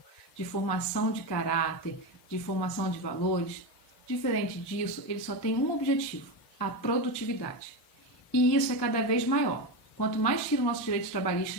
de formação de caráter, de formação de valores, diferente disso, ele só tem um objetivo: a produtividade. E isso é cada vez maior. Quanto mais tira os nossos direitos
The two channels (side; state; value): right; late; 1.2 ms